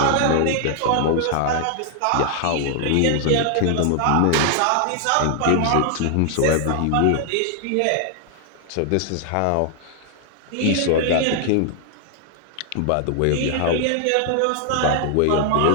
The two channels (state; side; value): different; both; correlation 0.00